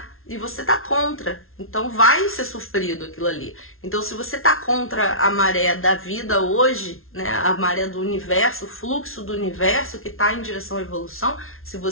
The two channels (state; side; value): late; right; 0.61 ms